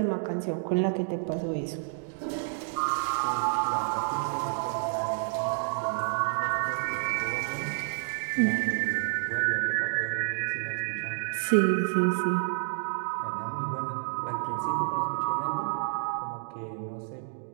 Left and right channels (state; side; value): silent; left; digital silence